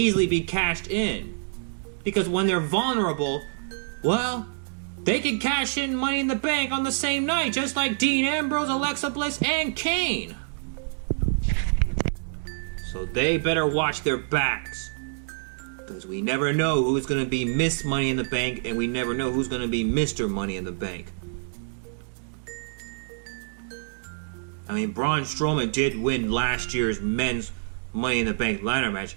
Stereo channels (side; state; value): left; silent; digital silence